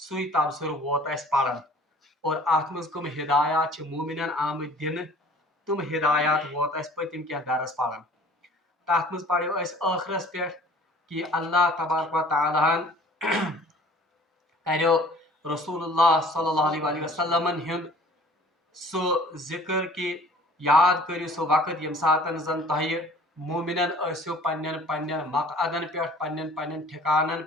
تبصر ووت اس پڑھن اور ات مز کم ہدایات مومنن آمت دن تم ہدایات ووت اس پتم کی درس پڑھن۔ تات مز پڑھو اس آخرس پہ کہ اللہ تبارک و تعالیٰ کرو رسول اللہ صلی اللہ علیہ وسلم ہند سہ ذکر کہ یاد کرو سہ وقت یم ساتن زن تہ مومنن اسو پنن مقعدن پہ پنن ٹھکانن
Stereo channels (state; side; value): normal; both; correlation 0.50